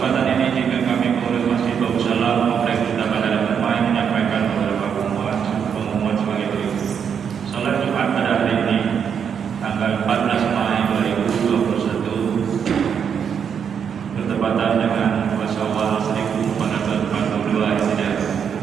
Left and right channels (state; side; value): quieter; left; 7.4 dB